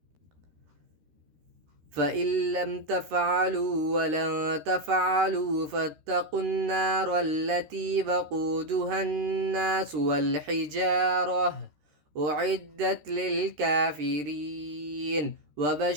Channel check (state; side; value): late; left; 13 ms